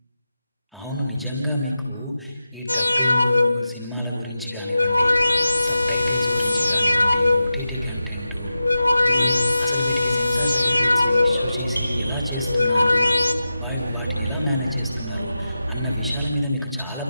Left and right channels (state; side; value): inverted; both; correlation -0.91